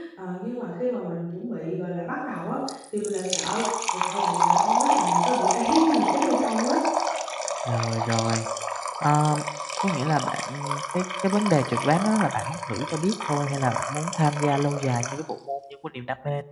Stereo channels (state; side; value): identical; both; correlation 1.00